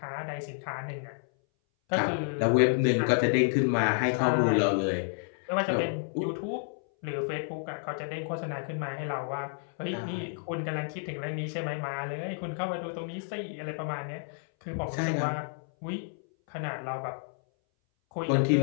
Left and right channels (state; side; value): silent; right; 58 dB below the other